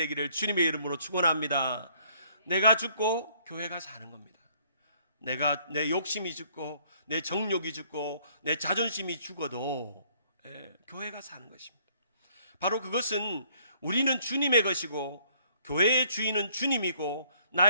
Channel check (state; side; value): inverted; both; correlation -0.63